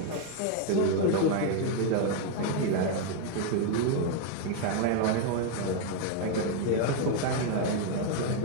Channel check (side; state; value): both; different; correlation 0.01